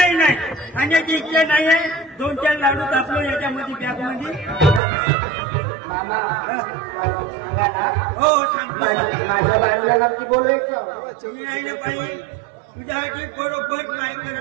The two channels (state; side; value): drops out; left; at 4.8 s